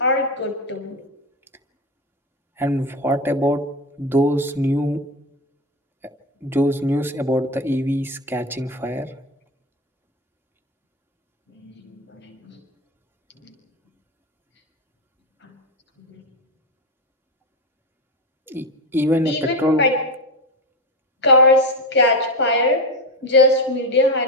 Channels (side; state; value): both; normal; correlation 0.16